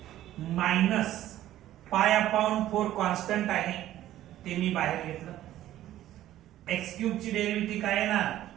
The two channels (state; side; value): quieter; left; 13.4 dB